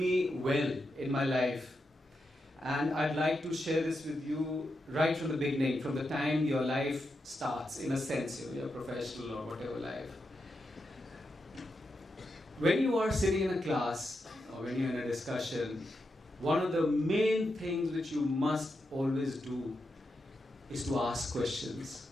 well in my life. And I'd like to share this with you right from the beginning, from the time your life starts, in a sense, your professional or whatever life. When you are sitting in a class or when you're in a discussion, one of the main things which you must always do is to ask questions.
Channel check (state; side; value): normal; both; correlation 0.86